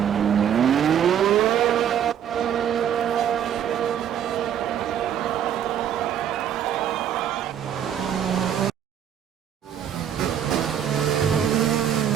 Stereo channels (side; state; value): left; quieter; 9.4 dB